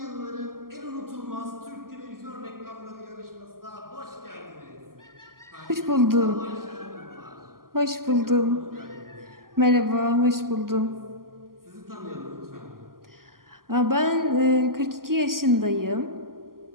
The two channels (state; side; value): late; left; 0.92 ms